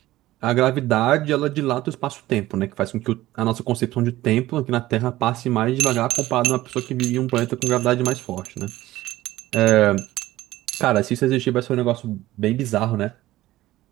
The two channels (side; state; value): left; quieter; 16.3 dB